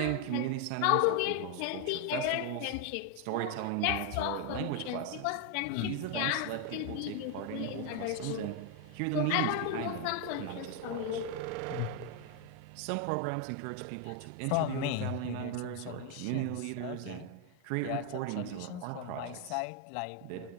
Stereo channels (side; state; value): both; different; correlation 0.01